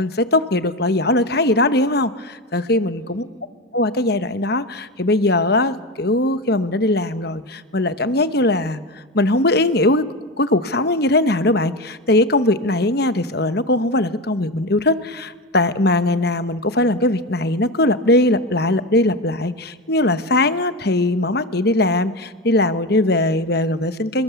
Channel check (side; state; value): both; normal; correlation 0.20